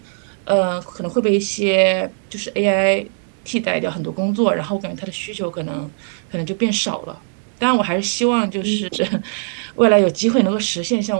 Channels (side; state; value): left; silent; digital silence